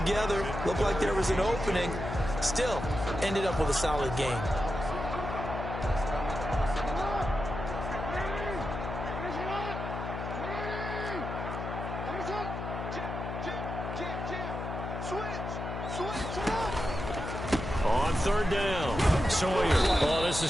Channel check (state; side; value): noise; left; hum, 5 dB below the sound